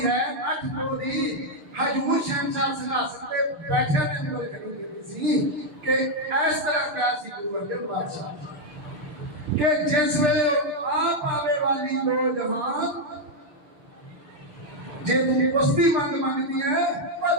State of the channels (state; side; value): late; left; 6.4 ms